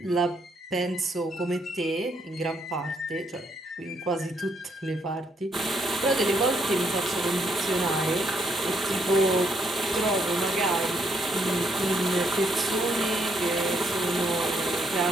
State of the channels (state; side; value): normal; both; correlation 0.73